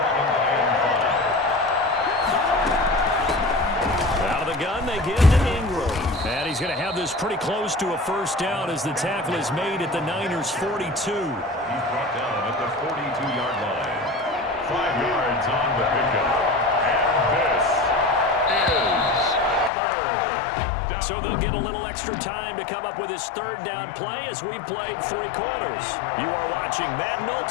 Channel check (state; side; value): drops out; right; at 19.7 s